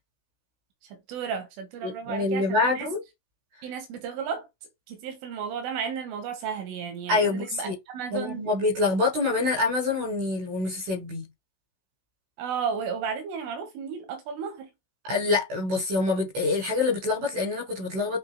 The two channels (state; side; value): late; left; 16 ms